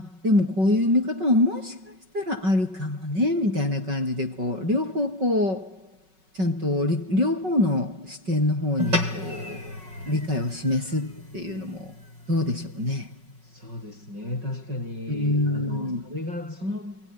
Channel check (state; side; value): late; left; 5.4 ms